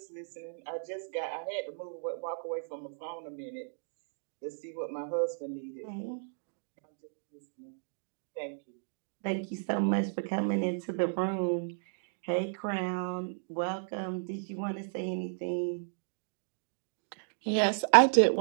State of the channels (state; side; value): silent; left; digital silence